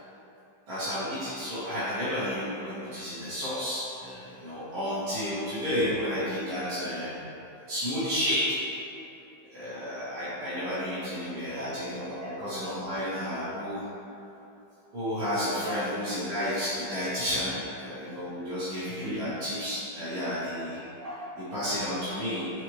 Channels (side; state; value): left; late; 15 ms